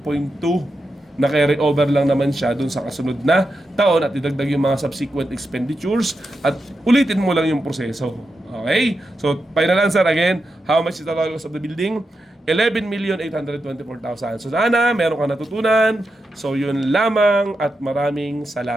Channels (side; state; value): both; normal; correlation 0.88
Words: na carry over lang naman siya dun sa kasunod na taon at idagdag yung mga subsequent expenditures at ulitin mo lang yung proseso. Okay? So, final answer again, how much is the total cost of the building? 11,824,000. So, sana meron ka natutunan. So, yun lamang at maraming